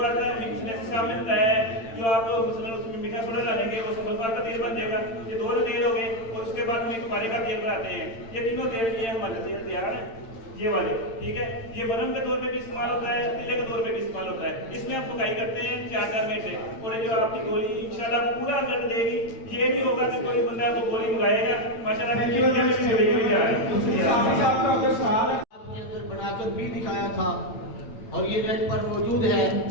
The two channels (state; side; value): late; right; 8.9 ms